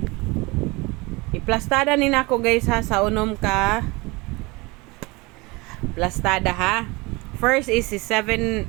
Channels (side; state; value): left; quieter; 24.6 dB